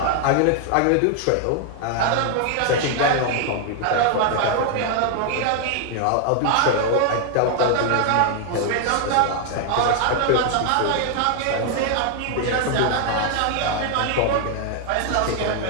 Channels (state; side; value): different; both; correlation 0.00